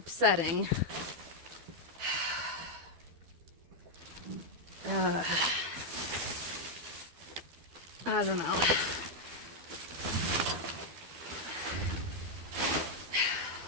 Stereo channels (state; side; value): late; left; 12 ms